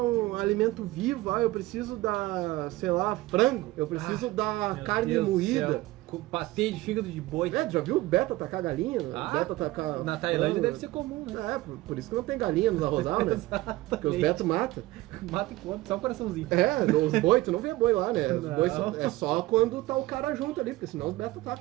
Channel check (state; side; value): quieter; left; 18.3 dB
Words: alimento vivo, eu preciso dar, sei lá, frango, eu preciso dar carne moída. Patê de fígado de boi. Já viu o beta tacar galinha? Beta tacar na Tailândia deve ser comum, né? Por isso que não tem galinha nos arrozal, né? Porque os betos matam. Mata e come, só um coraçãozinho. Os boi, tu não vê boi lá, né? Os boi é só quando tá o cara junto ali, porque senão os betas